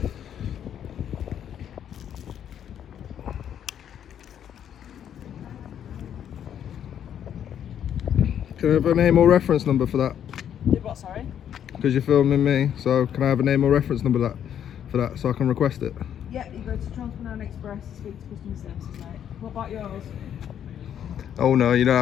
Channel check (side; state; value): right; quieter; 9.5 dB